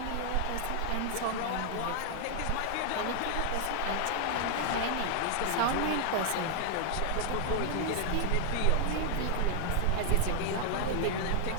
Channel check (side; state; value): both; different; correlation 0.00